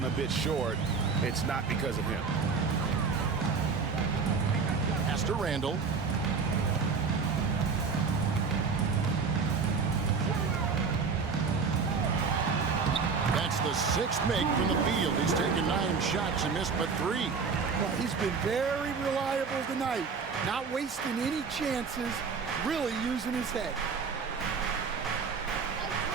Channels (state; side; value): quieter; left; 5.3 dB